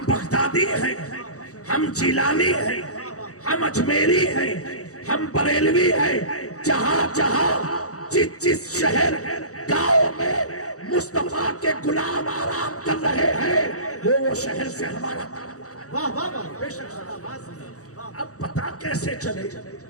بغدادی ہیں، ہم جیلانی ہیں، ہم اجمیری ہیں، ہم بریلوی ہیں. جہاں جہاں جس شہر گاؤں میں مصطفیٰ کے غلام آرام کر رہے ہیں وہ شہر سے ہمارا. اب پتا کیسے چلے؟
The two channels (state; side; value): late; right; 0.66 ms